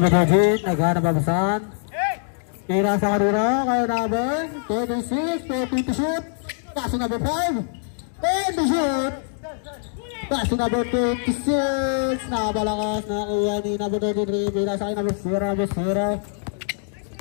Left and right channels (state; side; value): silent; right; digital silence